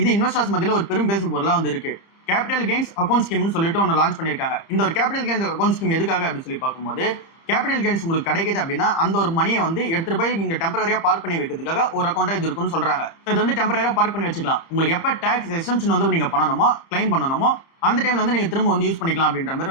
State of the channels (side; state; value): right; late; 30 ms